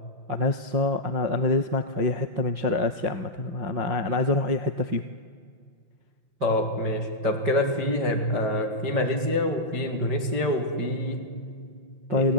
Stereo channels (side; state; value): left; late; 5.8 ms